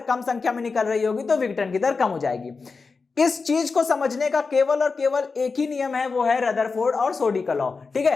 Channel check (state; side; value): quieter; right; 4.5 dB